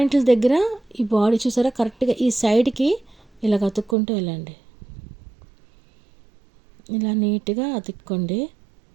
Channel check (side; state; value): left; drops out; at 4.0 s